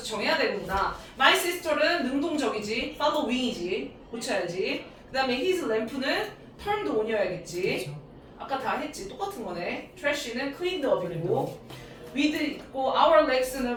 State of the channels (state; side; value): identical; both; correlation 1.00